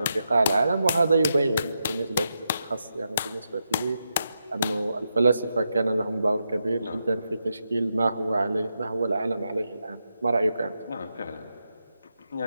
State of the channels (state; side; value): inverted; both; correlation -0.85